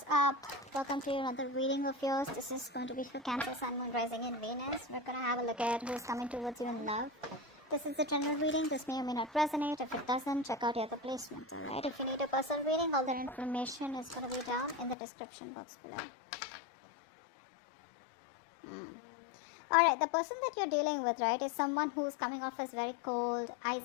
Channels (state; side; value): drops out; right; at 15.0 s